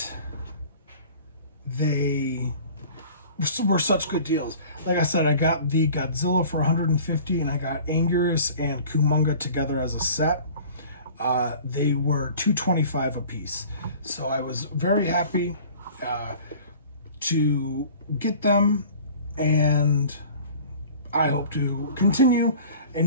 they were such good deals. Like I said, I got the Godzilla for 150, and I got Anguirus and Kumonga together as a set. They were $225 a piece. So I was very happy to get them, and I hope to continue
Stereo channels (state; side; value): inverted; both; correlation -0.45